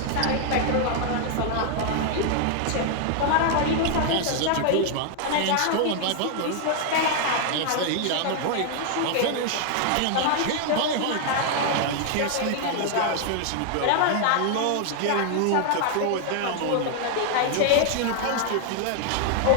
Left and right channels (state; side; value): different; both; correlation 0.00